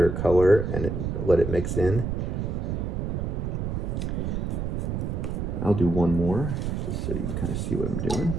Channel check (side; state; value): right; noise; rumble, 2 dB below the sound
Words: color and let it mix in. I'll do one more, just so you can kind of see what I'm doing.